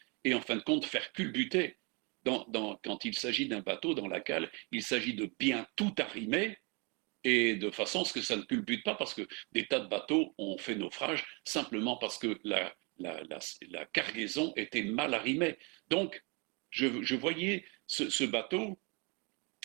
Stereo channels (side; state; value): left; quieter; 31.3 dB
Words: et en fin de compte faire culbuter. Quand il s'agit d'un bateau dans la cale, il s'agit de bien tout arrimer et de façon à ce que ça ne culbute pas, parce que des tas de bateaux ont fait naufrage simplement parce que la cargaison était mal arrimée. Donc, je voyais ce bateau,